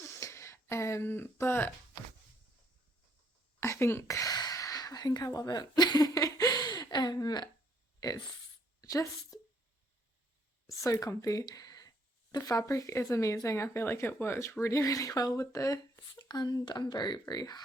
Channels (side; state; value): both; normal; correlation 0.68